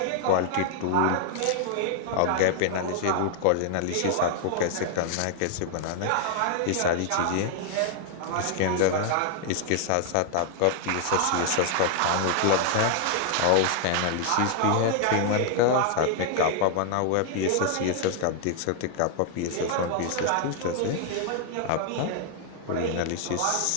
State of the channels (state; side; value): different; both; correlation 0.00